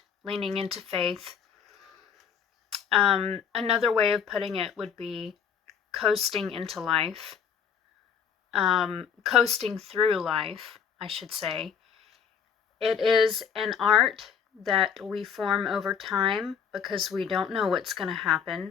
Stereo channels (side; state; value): right; quieter; 7.3 dB